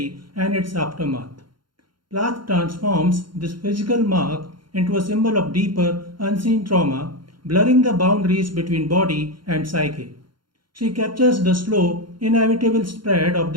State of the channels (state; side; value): late; left; 0.72 ms